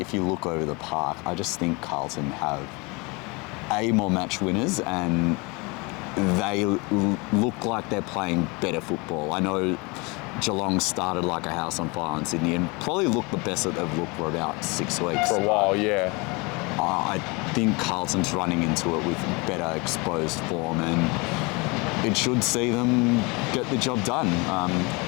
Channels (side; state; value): right; quieter; 27.6 dB